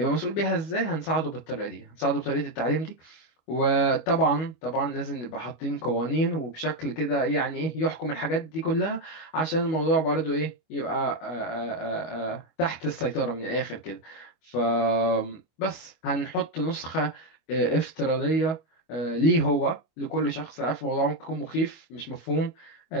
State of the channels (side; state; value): right; late; 25 ms